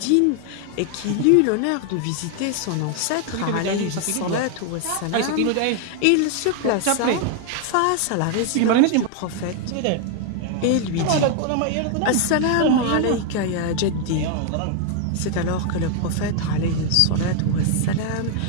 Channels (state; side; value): different; both; correlation 0.00